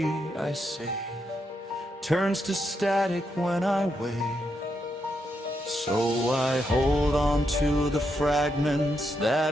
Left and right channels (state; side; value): normal; both; correlation 0.81